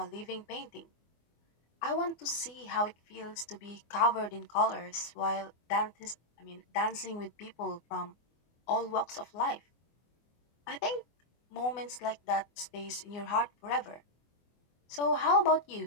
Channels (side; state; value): right; late; 24 ms